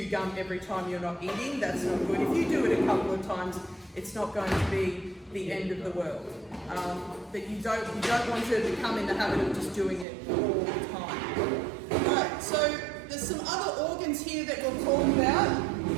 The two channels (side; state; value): left; drops out; at 10.1 s